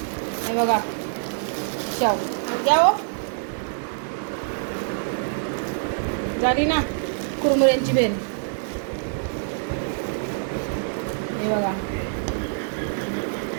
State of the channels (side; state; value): left; silent; digital silence